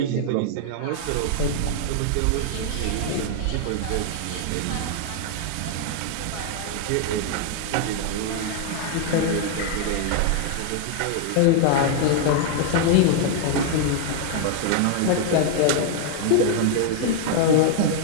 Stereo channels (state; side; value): different; both; correlation 0.00